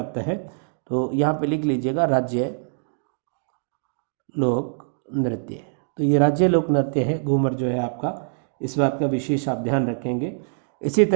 है। तो यहाँ पे लिख लीजिएगा राज्य लोक नृत्य। तो ये राज्य लोक नृत्य है घूमर जो है आपका, इस बात का विशेष आप ध्यान रखेंगे। इसी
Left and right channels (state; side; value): silent; left; digital silence